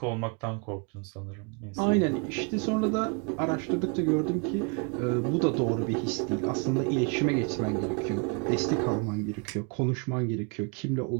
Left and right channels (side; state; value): left; quieter; 34.9 dB